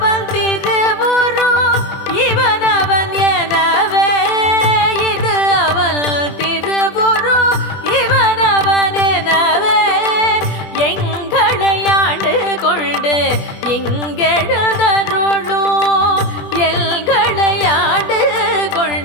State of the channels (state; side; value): late; right; 20 ms